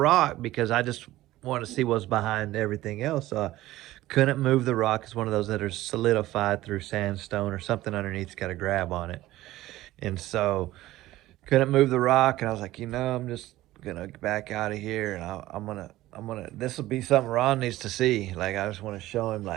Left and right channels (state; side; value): quieter; left; 16.1 dB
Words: because I just want to see what's behind everything else. So I couldn't move the rock. It's one of those that are solidified through sandstone or something underneath's got a grab on it. And so couldn't move the rock, and I was like, I'm just gonna back out of here, and I'm gonna this will be something Ron needs to see. Like, I just want to show him,